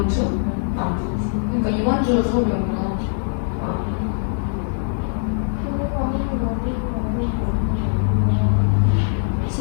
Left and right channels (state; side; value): silent; right; 65 dB below the other